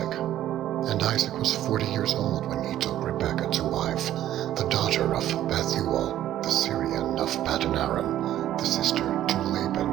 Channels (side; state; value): left; quieter; 12.5 dB